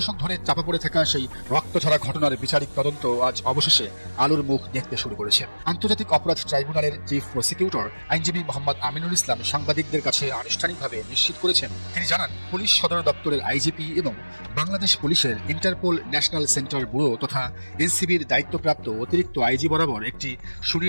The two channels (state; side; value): inverted; both; correlation -1.00